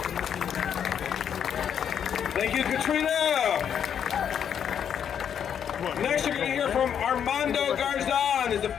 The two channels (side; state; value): right; quieter; 8.4 dB